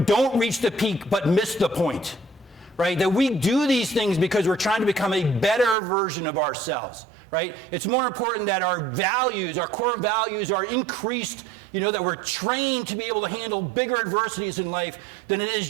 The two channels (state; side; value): drops out; left; at 5.8 s